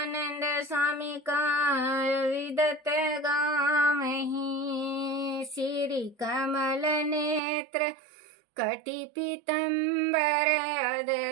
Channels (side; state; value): left; drops out; at 7.4 s